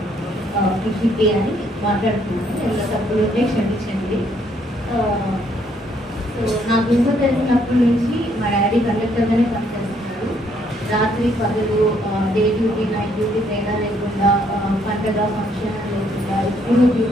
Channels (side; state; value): both; normal; correlation 0.69